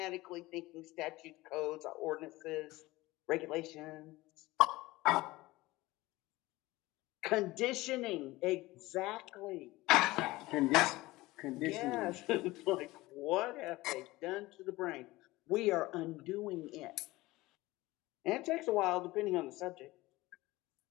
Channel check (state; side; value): quieter; right; 19.5 dB